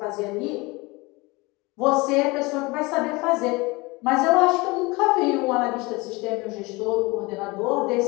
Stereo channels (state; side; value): quieter; right; 24.1 dB